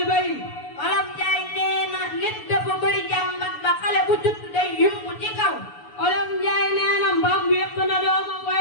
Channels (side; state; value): right; late; 6.9 ms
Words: bay. Wolof Njaay nee na nit dafa bëri jàmbat ba xale bu judd day yumbu ci kaw. Wolof Njaay nee na mbaam wéq na doomam